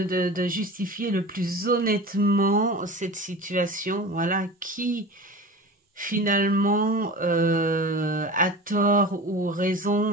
justifier le plus honnêtement cette situation, voilà, qui finalement a tort ou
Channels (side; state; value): both; normal; correlation 0.34